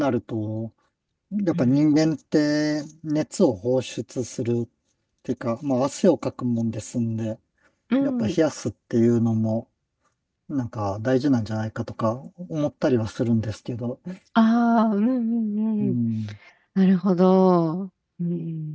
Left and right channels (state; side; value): identical; both; correlation 1.00